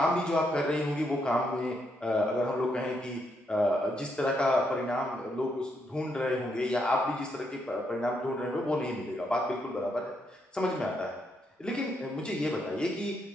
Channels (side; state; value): both; normal; correlation 0.78